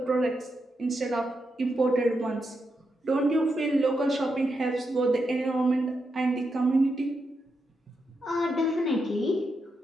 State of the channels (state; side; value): normal; both; correlation 0.85